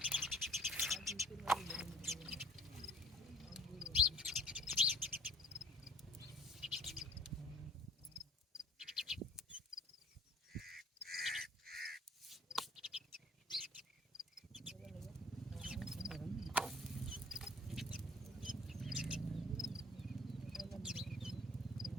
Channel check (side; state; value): both; normal; correlation 0.51